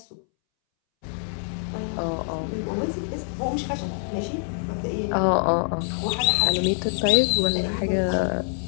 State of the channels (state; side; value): silent; right; 62 dB below the other